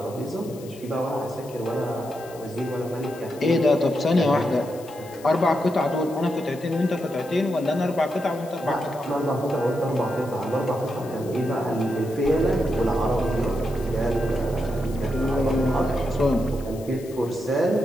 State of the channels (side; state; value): left; noise; hiss, 21 dB below the sound